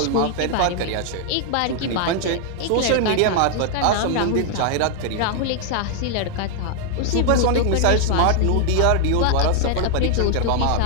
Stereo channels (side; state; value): both; different; correlation 0.00